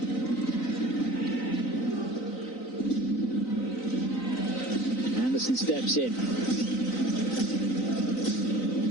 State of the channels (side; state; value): right; late; 3.9 ms